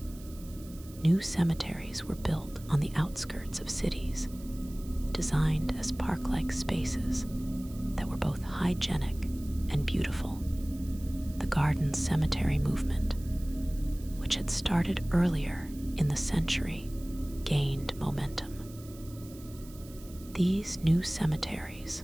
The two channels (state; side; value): noise; right; hiss, 21 dB below the sound